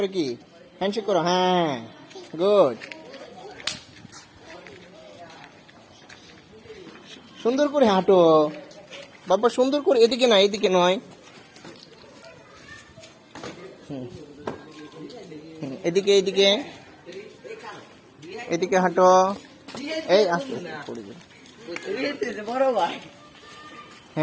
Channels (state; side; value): identical; both; correlation 1.00